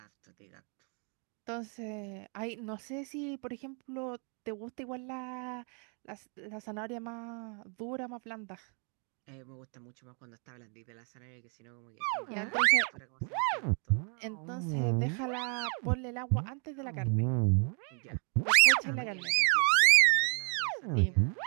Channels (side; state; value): left; quieter; 38.9 dB